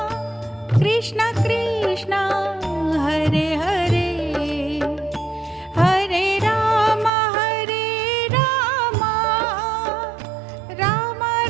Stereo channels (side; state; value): left; drops out; at 7.1 s